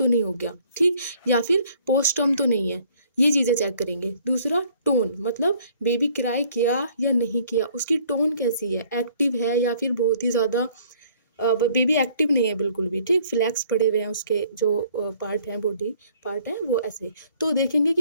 नहीं हो गया, ठीक, या फिर पोस्ट टर्म तो नहीं है, ये चीज़ें चेक करेंगे। दूसरा टोन, मतलब बेबी क्राई किया या नहीं किया, उसकी टोन कैसी है, एक्टिव है या फिर बहुत ही ज़्यादा बेबी एक्टिव नहीं है बिल्कुल भी, ठीक, फ्लैक्स पड़े हुए हैं, उसके जो पार्ट हैं, बॉडी पार्ट हैं वो ऐसे। तो देखेंगे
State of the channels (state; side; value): inverted; both; correlation -0.60